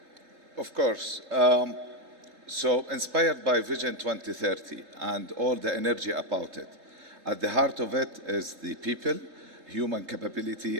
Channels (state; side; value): late; left; 3.8 ms